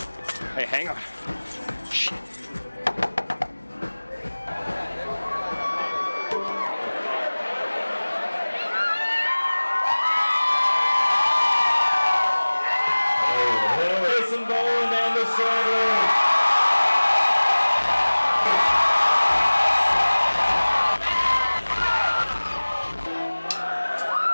Hey, hang on. Shit.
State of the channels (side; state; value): both; inverted; correlation -1.00